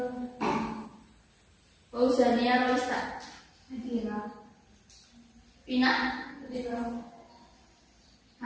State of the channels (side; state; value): both; identical; correlation 1.00